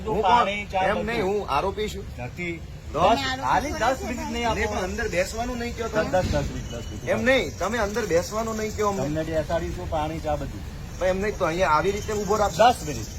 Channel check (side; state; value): both; identical; correlation 1.00